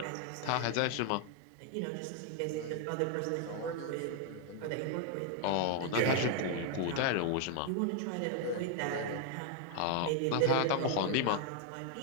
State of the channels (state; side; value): different; both; correlation 0.00